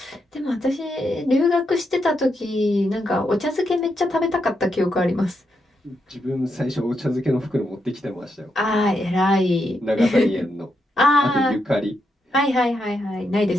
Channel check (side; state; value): both; normal; correlation 0.82